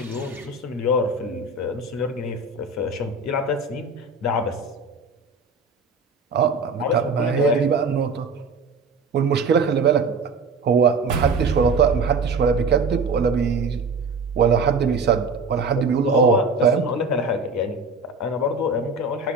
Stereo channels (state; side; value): quieter; left; 3.7 dB